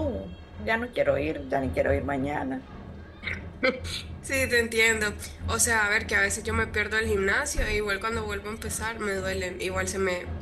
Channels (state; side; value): identical; both; correlation 1.00